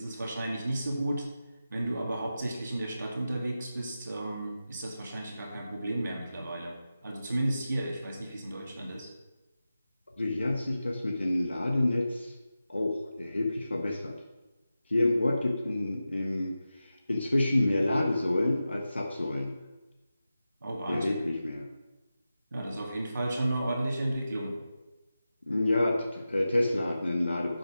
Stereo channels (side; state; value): both; inverted; correlation -0.93